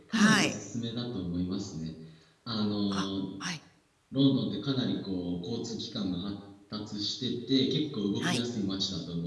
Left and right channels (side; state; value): both; identical; correlation 1.00